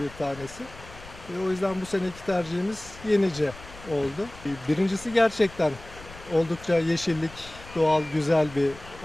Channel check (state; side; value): noise; left; rumble, 18 dB below the sound